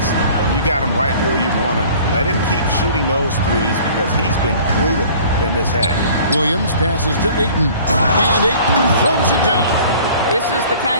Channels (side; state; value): both; inverted; correlation -0.49